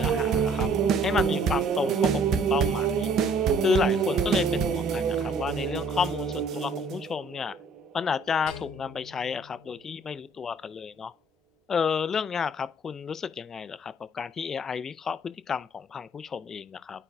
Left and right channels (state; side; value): normal; both; correlation 0.58